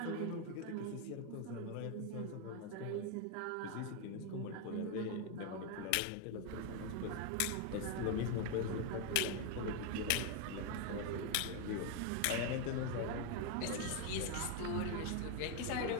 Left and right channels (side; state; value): both; different; correlation 0.01